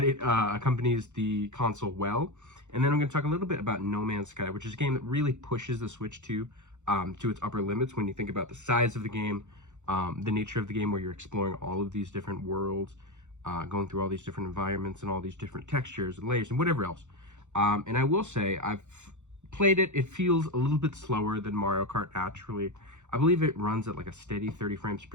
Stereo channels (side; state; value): left; late; 0.84 ms